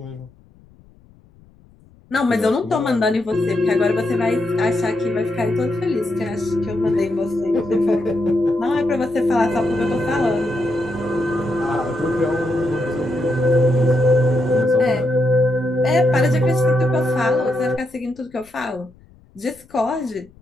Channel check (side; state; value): left; noise; rumble, 28 dB below the sound